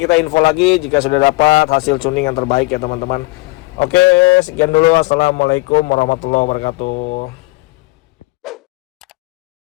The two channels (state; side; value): quieter; right; 22.9 dB